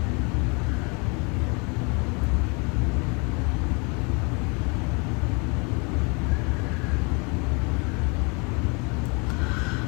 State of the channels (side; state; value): right; quieter; 32.1 dB